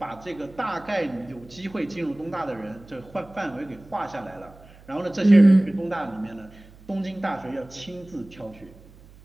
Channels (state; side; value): noise; right; hum, 23 dB below the sound